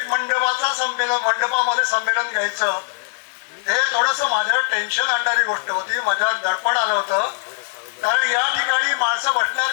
मंडपामध्ये संमेलन घ्यायचं हे थोडंसं माझ्यावर टेन्शन आणणारी गोष्ट होती, माझ्यावर दडपण आलं होतं. कारण या ठिकाणी माणसं बसणार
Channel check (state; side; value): silent; right; 65 dB below the other